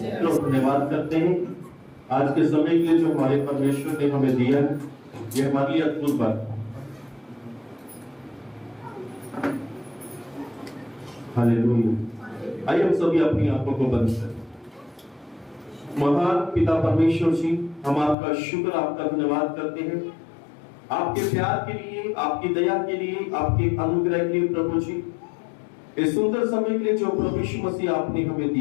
तो धन्यवाद करते हैं आज के समय के लिए जो हमारे परमेश्वर ने हमें दिया है। ये हमारे लिए अद्भुत बात है। हालेलुया। आइए हम सभी अपनी आंखों को बंद करें। महान पिता परमेश्वर जी, हम आपका शुक्र, आपका धन्यवाद करते हैं आपके प्यार के लिए, आपकी दया के लिए, आपके अनुग्रह के लिए प्रभु जी। इस सुंदर समय के लिए जो प्रभु यीशु मसीह आपने हमें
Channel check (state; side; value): drops out; right; at 18.2 s